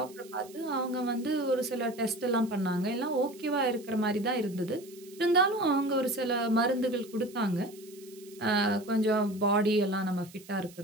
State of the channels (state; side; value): noise; right; hiss, 22 dB below the sound